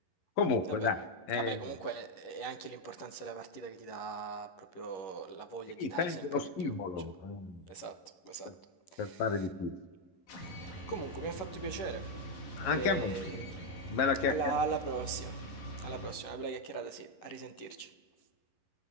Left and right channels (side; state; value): right; late; 11 ms